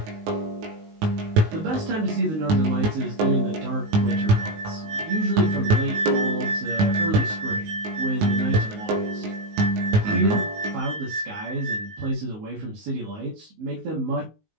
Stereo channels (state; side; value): late; left; 19 ms